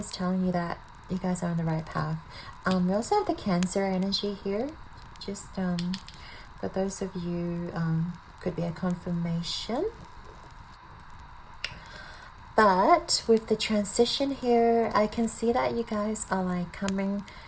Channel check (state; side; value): identical; both; correlation 1.00